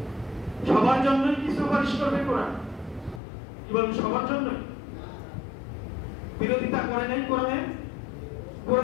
সবার জন্য কি সুপারিশ করবে কোরআন? কি বলেন, সবার জন্য? বিরোধিতা করে নাই কোরআনে?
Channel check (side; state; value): right; drops out; at 3.2 s